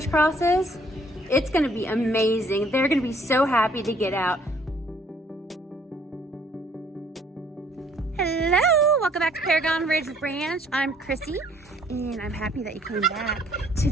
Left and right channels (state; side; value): normal; both; correlation 0.61